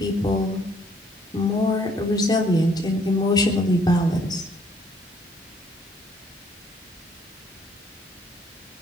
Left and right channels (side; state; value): both; normal; correlation 0.63